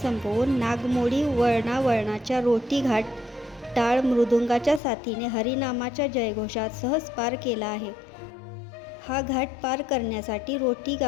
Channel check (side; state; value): right; drops out; at 4.8 s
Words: संपवून नागमोडी वळणावळणाच्या रोटी घाट टाळ मृदुंगाच्या साथीने हरिनामाच्या जयघोषात सहज पार केला आहे. हा घाट पार करण्यासाठी रोटी